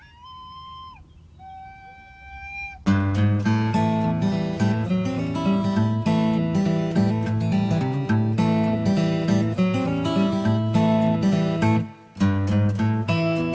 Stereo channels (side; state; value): both; identical; correlation 1.00